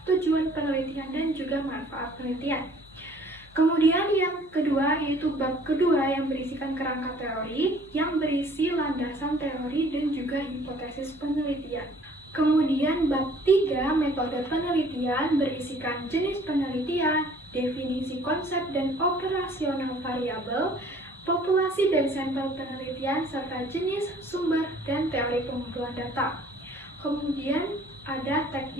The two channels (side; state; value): both; normal; correlation 0.55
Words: tujuan penelitian, dan juga manfaat penelitian. Kemudian yang kedua yaitu bab kedua yang berisikan kerangka teori, yang berisi landasan teori dan juga hipotesis penelitian. Kemudian bab 3 metode penelitian berisikan jenis penelitian, definisi konsep dan operasional variabel, populasi dan sampel penelitian, serta jenis, sumber, dan teori pengumpulan data. Kemudian ada